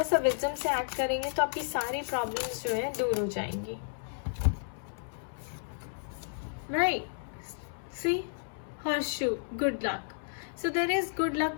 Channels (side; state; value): right; silent; 56 dB below the other